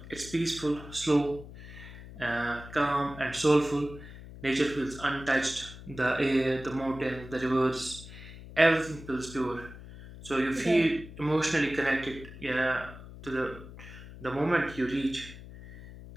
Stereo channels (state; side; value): noise; left; hum, 15 dB below the sound